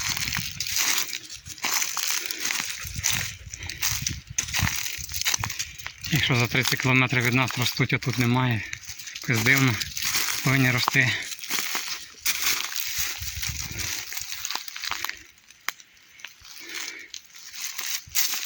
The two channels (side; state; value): both; identical; correlation 1.00